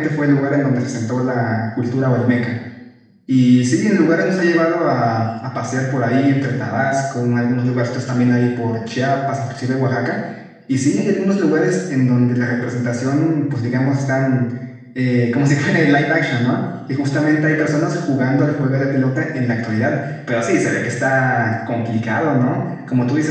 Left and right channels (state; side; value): identical; both; correlation 1.00